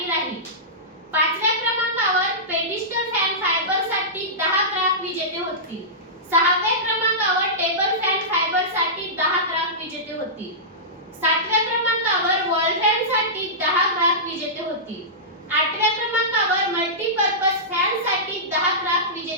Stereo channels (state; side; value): normal; both; correlation -0.17